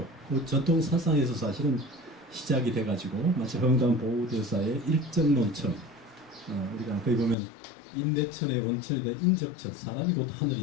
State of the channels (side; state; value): right; drops out; at 7.4 s